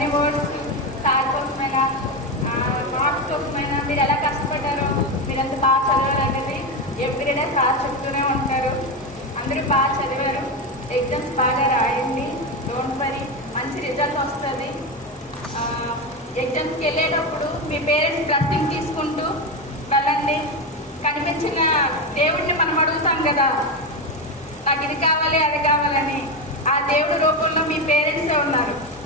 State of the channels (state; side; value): normal; both; correlation 0.14